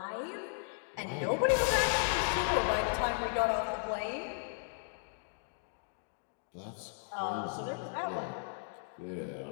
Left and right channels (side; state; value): right; silent; digital silence